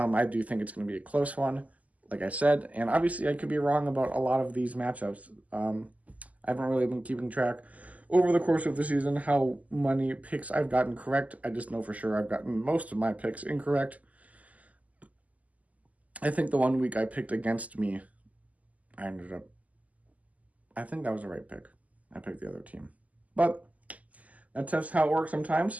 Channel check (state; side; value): late; left; 0.074 ms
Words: do think it's going to be a close one, like I said. And obviously, I could be wrong about a lot of these matchups. I haven't really been keeping track over the course of the season how many picks I've gotten correct. I just know for sure I've gotten most of my picks incorrect. I think the 1 week I picked against me, I think that was the right pick. I picked the other team. But that's just how it works